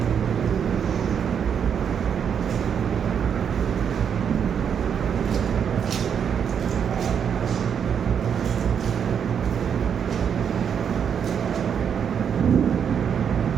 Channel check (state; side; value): quieter; left; 7.7 dB